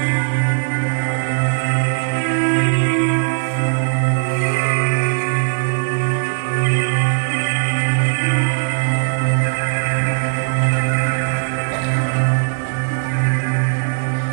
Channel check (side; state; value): left; silent; digital silence